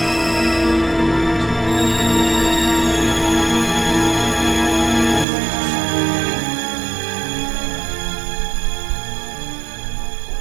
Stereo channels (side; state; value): left; drops out; at 5.2 s